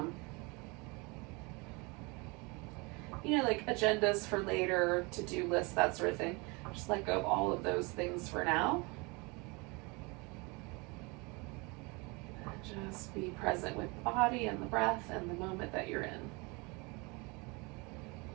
like agendas for later, to-do lists, that sort of thing. Just let go of all of those things for now. And just be present with the body and the breath and the moment that you're in.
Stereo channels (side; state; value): left; quieter; 27.9 dB